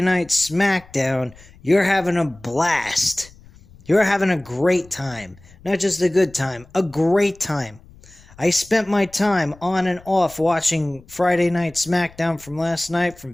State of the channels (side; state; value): left; noise; rumble, 24 dB below the sound